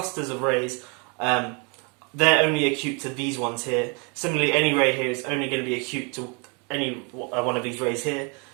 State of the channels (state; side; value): quieter; left; 33.6 dB